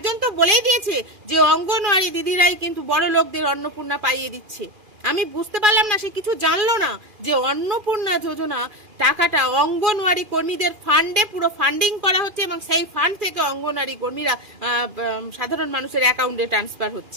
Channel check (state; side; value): late; left; 2.4 ms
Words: তো বলেই দিয়েছে যে অঙ্গনওয়াড়ি দিদিরাই কিন্তু বড় লোকদের অন্নপূর্ণা পাইয়ে দিচ্ছে। আমি বুঝতে পারলাম না, সে কিছু জানলো না যে অন্নপূর্ণা যোজনা টাকাটা অঙ্গনওয়াড়ি কর্মীদের ফান্ডে পুরো ফান্ডিং করা হচ্ছে এবং সেই ফান্ড থেকে অঙ্গনওয়াড়ি কর্মীরা সাধারণ মানুষের অ্যাকাউন্টে ট্রান্সফার